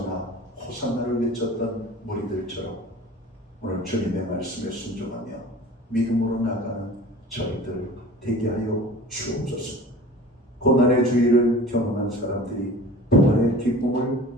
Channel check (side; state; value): both; normal; correlation 0.41